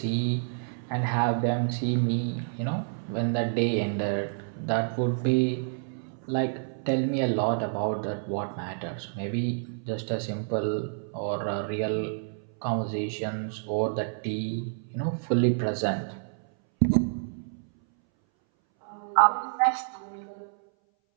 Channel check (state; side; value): silent; left; 59 dB below the other